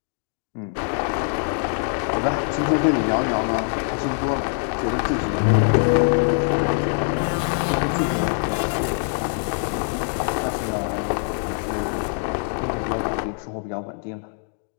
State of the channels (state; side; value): silent; right; 63 dB below the other